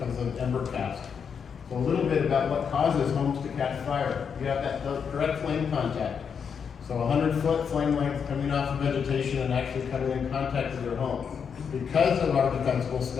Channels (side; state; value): right; quieter; 6.8 dB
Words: of ember cast. So a little bit about what causes homes to catch fire. You have that direct flame contact. So 100-foot flame length coming off of vegetation and actually coming in contact with your home. Because of our defensible